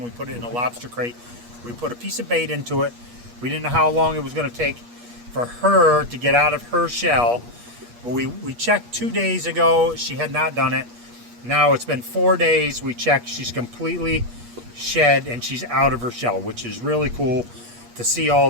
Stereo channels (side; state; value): left; late; 8.4 ms